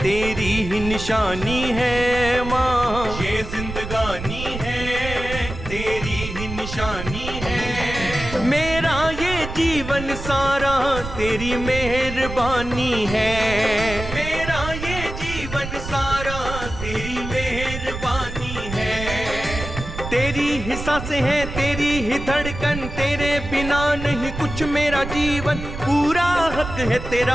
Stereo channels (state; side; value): noise; right; rumble, 8 dB below the sound